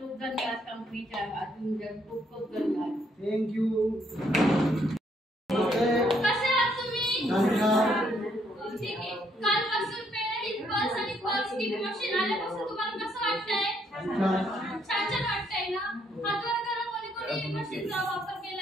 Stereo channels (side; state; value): both; normal; correlation 0.71